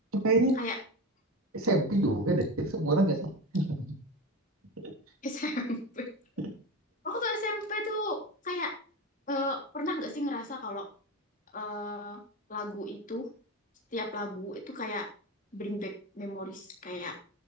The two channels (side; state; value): both; normal; correlation 0.23